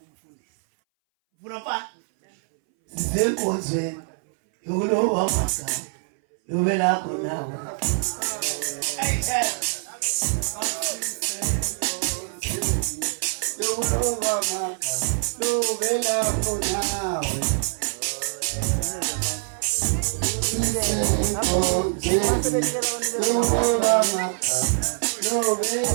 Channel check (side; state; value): left; silent; 60 dB below the other